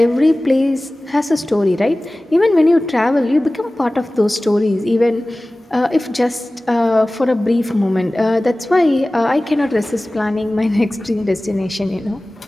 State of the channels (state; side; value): normal; both; correlation 0.98